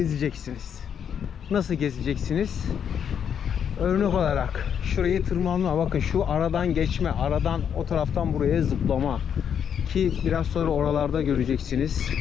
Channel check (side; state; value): right; quieter; 8.1 dB